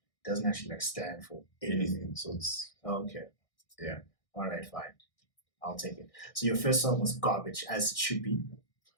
It doesn't actually stand for Anything. So it's okay. Yeah. All right, fine. I'll take it. So your first song was garbage, as it should be.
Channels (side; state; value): right; late; 1.6 ms